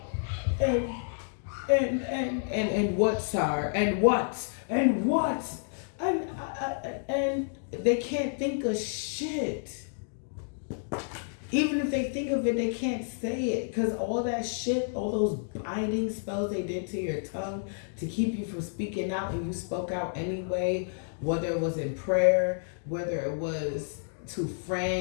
what, sir? And what? And they can't think of shit. Even if they think of it, they can't say it, because all that shit, all those binding spells they did to your tongue to keep you from speaking out, and you spoke out anyway, whether it was in prayer, whether it was to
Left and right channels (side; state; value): right; silent; digital silence